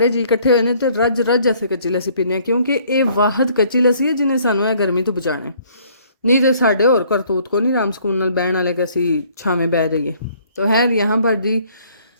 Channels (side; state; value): both; inverted; correlation -0.61